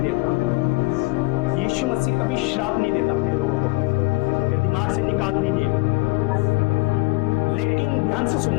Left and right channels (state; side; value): quieter; right; 23.3 dB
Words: यीशु मसीह कभी श्राप नहीं देता अपने लोगों को, ये दिमाग से निकाल दीजिए। लेकिन ध्यान से